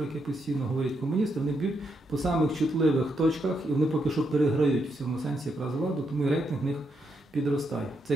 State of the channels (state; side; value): normal; both; correlation 0.80